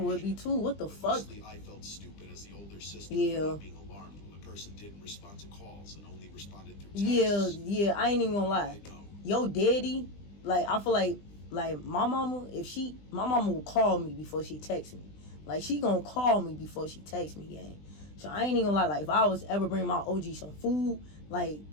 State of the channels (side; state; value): right; late; 20 ms